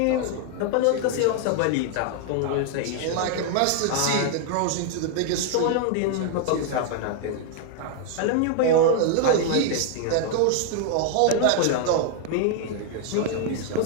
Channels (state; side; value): different; both; correlation 0.00